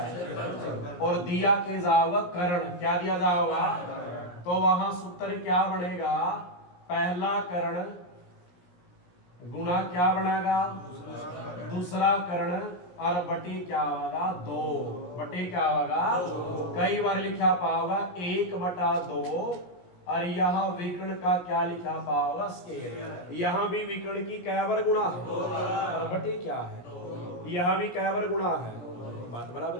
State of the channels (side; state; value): right; late; 17 ms